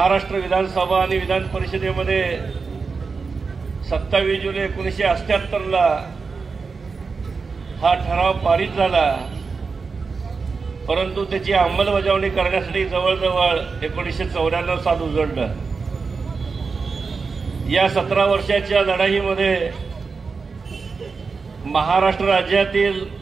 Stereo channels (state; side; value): quieter; left; 4.8 dB